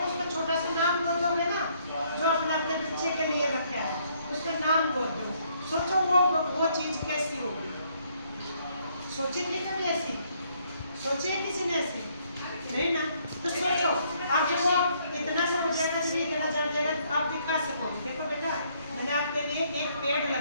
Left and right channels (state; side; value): inverted; both; correlation -0.68